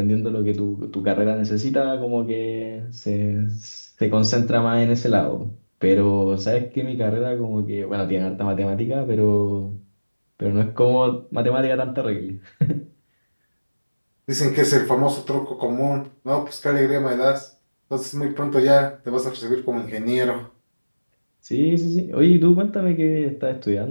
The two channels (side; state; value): both; inverted; correlation -1.00